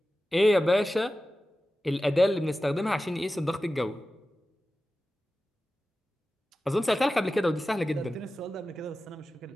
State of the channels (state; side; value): normal; both; correlation 0.94